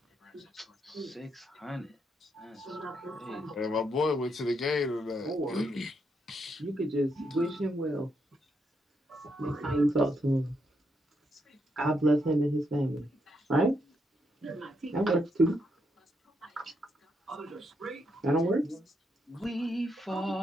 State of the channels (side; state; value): both; normal; correlation 0.79